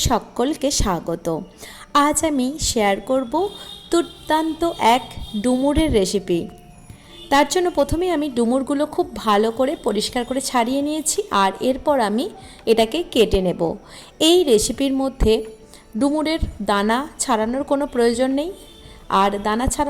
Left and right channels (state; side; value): identical; both; correlation 1.00